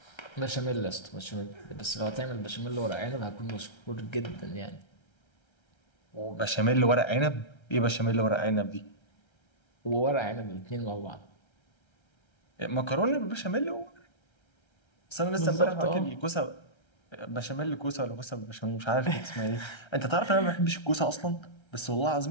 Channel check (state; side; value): late; right; 1.3 ms